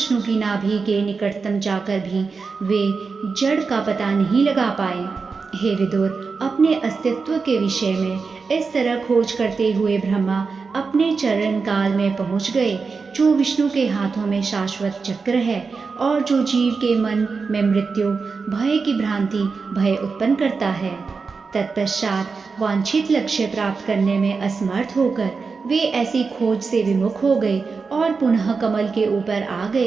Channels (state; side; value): quieter; left; 4.8 dB